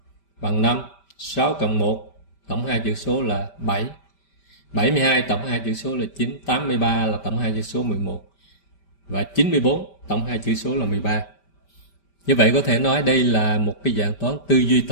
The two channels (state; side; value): late; right; 5.1 ms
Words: bằng 5, 6 cộng 1 tổng 2 chữ số là 7, 72 tổng 2 chữ số là 9, 83 là tổng 2 chữ số 11 và 94 tổng 2 chữ số là 13. Như vậy có thể nói đây là một cái dạng toán tư duy